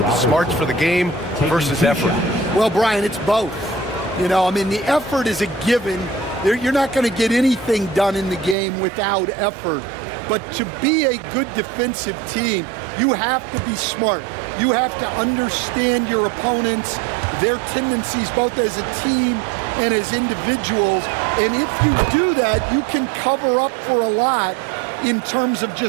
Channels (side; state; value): left; drops out; at 8.6 s